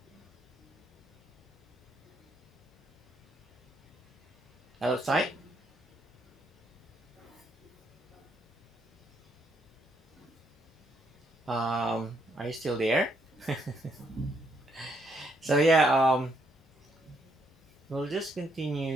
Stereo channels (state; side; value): normal; both; correlation 0.74